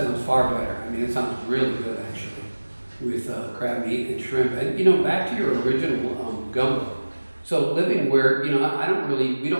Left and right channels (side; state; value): both; inverted; correlation -1.00